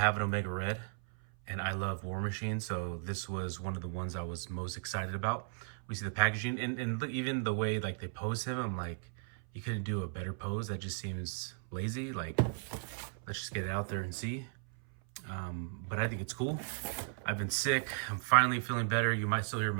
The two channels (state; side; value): silent; left; 54 dB below the other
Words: an Omega Red, and I love War Machine, so this was one of the ones I was most excited about. We see the packaging, and even the way like they pose him, I'm like, you couldn't do a better pose. That just seems lazy. Like, let's just get it out there and see. But I think it's cool. I've been sick. I'm finally feeling better. You might still hear